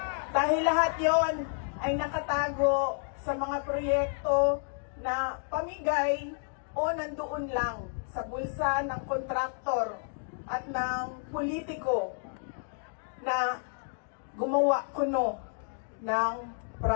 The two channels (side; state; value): right; silent; digital silence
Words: Dahil lahat yon ay nakatago sa mga proyekto na pamigay o nandoon lang sa bulsa ng kontraktor at ng politiko na gumawa kuno ng